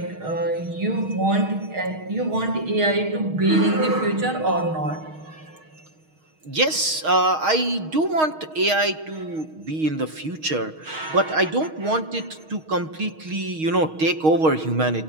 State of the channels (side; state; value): left; late; 6.4 ms